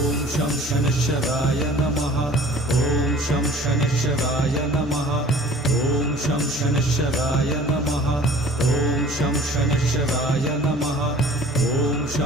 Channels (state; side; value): normal; both; correlation 0.47